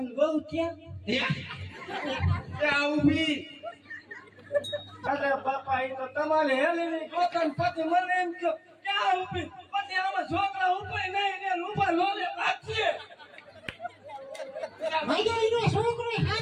બહુ ત્યાં. એ આ ઊભી અરે બાપા એ તો તમારે હેલીની ગોતન પછી મને એમ કહો ક્યાં ઊભી પછી આમાં છોકરા ઊભી નહીં ને ઊભા લોલે પાછે. ભાઈ એનો છોકરો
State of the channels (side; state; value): both; identical; correlation 1.00